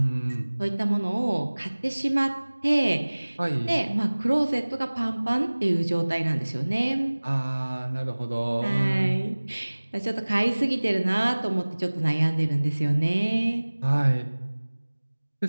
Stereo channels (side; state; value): both; inverted; correlation -1.00